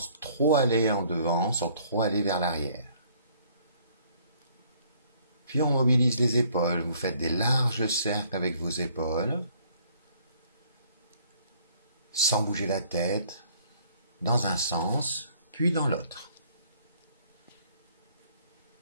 trop aller en devant, sans trop aller vers l'arrière. Puis on mobilise les épaules, vous faites des larges cercles avec vos épaules, sans bouger la tête, dans un sens, puis dans l'autre.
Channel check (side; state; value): both; inverted; correlation -0.61